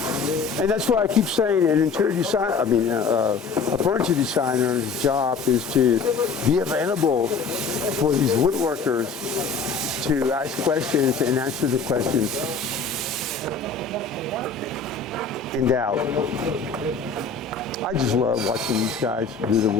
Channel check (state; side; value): quieter; right; 4.8 dB